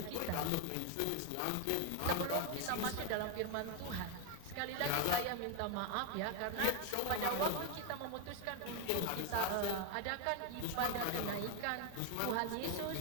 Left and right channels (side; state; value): both; different; correlation 0.01